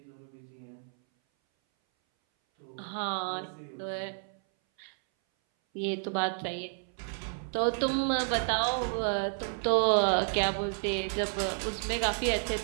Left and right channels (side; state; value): left; silent; 57 dB below the other